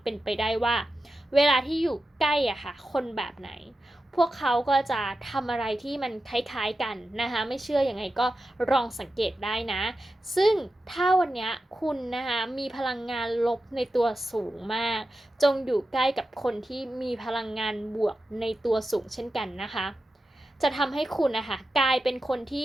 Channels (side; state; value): both; normal; correlation 0.91